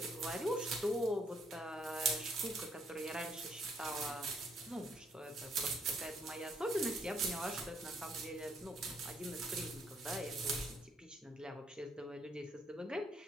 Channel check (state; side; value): normal; both; correlation 0.69